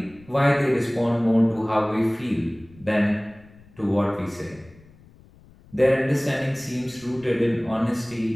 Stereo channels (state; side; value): noise; left; rumble, 25 dB below the sound